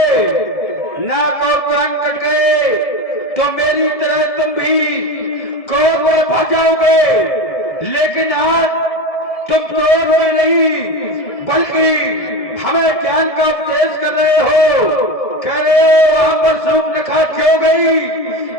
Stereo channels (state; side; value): late; right; 1.7 ms